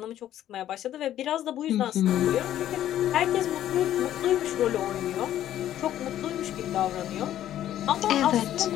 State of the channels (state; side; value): quieter; right; 12.0 dB